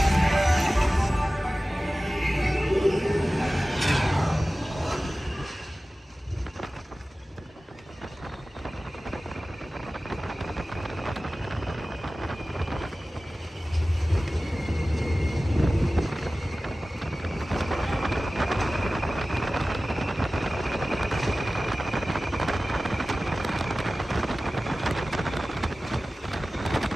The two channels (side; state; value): both; normal; correlation 0.96